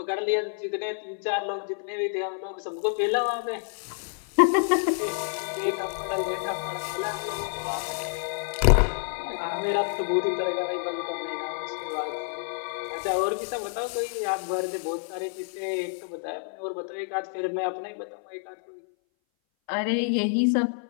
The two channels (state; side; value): silent; right; 58 dB below the other